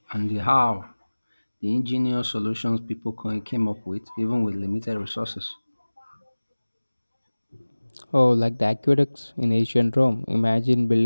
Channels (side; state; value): both; inverted; correlation -1.00